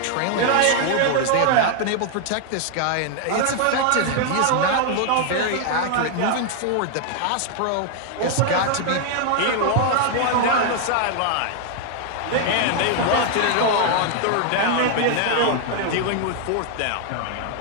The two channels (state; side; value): different; both; correlation 0.00